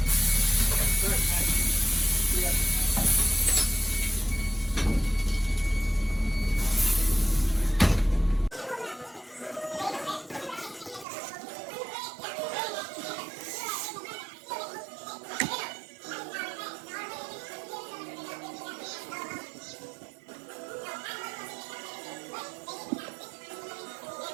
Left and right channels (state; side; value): drops out; left; at 11.1 s